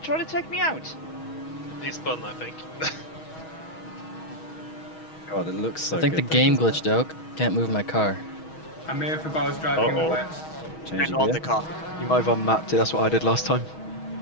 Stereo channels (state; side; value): late; right; 6.3 ms